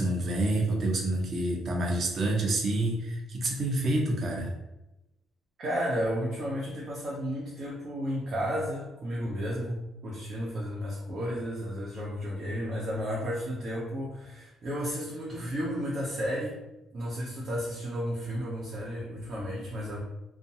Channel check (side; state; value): both; normal; correlation 0.75